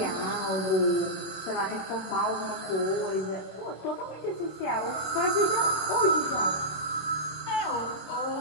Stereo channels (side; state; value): right; late; 27 ms